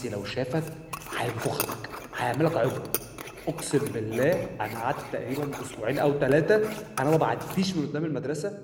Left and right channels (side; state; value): both; identical; correlation 1.00